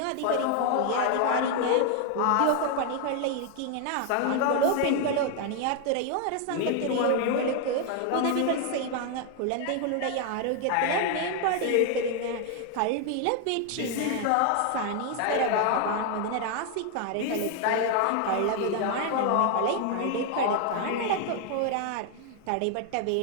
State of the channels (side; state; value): both; different; correlation 0.00